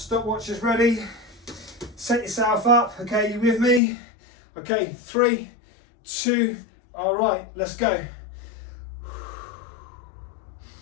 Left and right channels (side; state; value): right; drops out; at 3.8 s